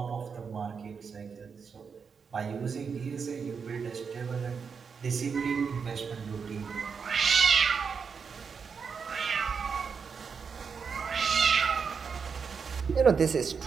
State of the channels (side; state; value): left; quieter; 5.9 dB